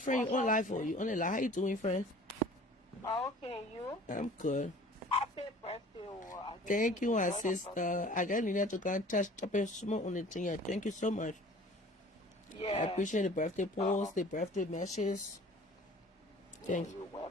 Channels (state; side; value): normal; both; correlation 0.48